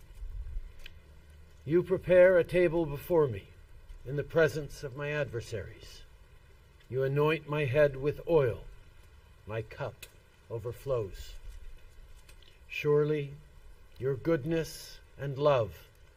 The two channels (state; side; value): identical; both; correlation 1.00